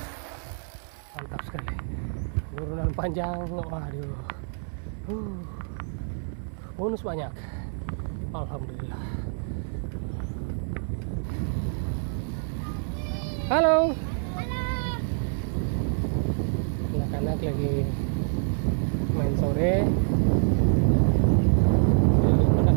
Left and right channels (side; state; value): left; silent; 60 dB below the other